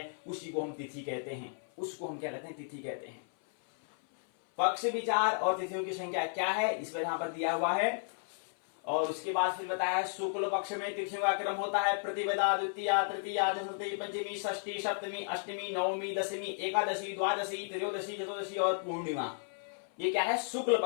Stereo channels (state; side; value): silent; right; 55 dB below the other